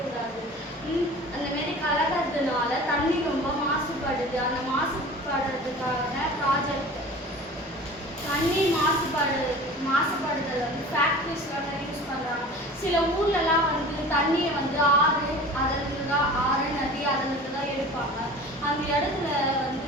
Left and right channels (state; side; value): normal; both; correlation 0.40